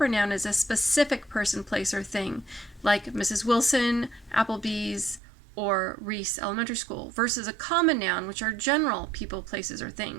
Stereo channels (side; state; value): left; drops out; at 5.2 s